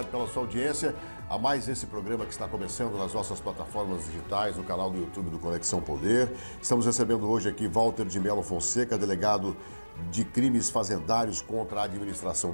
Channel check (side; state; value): both; inverted; correlation -1.00